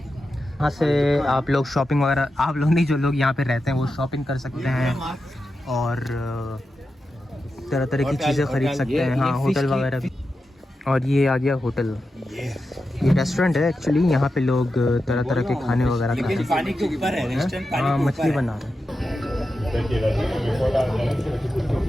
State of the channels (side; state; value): both; normal; correlation 0.90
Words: से आप लोग शॉपिंग वगैरह, आप लोग नहीं जो लोग यहाँ पे रहते हैं वो शॉपिंग कर सकते हैं और तरह तरह की चीज़ें खरीद सकते हैं। हाँ होटल वगैरह भी। और ये आ गया होटल, ये रेस्टोरेंट है एक्चुअली। यहाँ पे लोग तरह तरह के खाने वगैरह खाते हैं। पानी के ऊपर है रेस्टोरेंट, हाँ मछली बना रहे हैं।